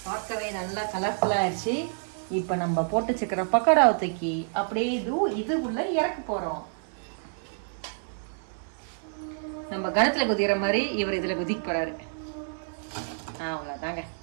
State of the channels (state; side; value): silent; left; 59 dB below the other